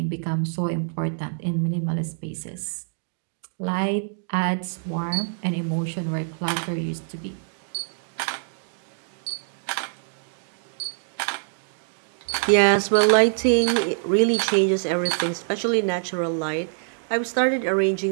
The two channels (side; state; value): left; silent; digital silence